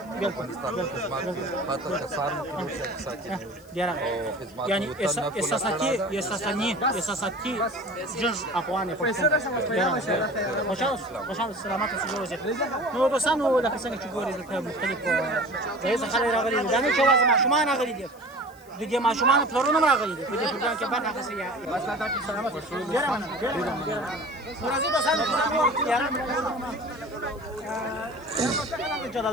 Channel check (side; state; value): left; noise; hiss, 26 dB below the sound